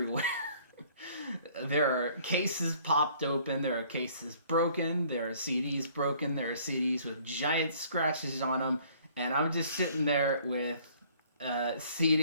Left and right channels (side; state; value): both; inverted; correlation -0.57